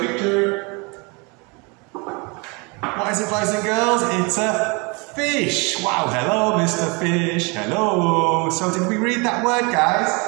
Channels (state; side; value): quieter; left; 29.7 dB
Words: picture. What is it, boys and girls? It's a fish. Wow, hello, Mr. Fish. Hello. So did we read that word, guys?